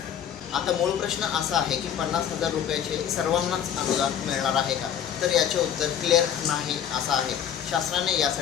आता मूळ प्रश्न असा आहे की 50,000 रुपयाचे सर्वांनाच अनुदान मिळणार आहे का? तर याचे उत्तर क्लिअर नाही असं आहे। शासनाने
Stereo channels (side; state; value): right; quieter; 9.2 dB